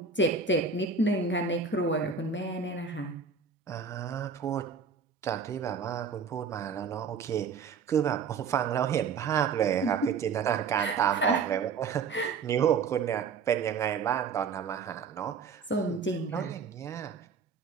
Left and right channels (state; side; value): quieter; left; 5.6 dB